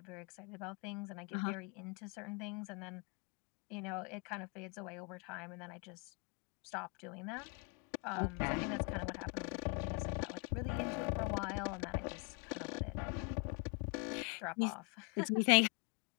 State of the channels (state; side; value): quieter; right; 34.0 dB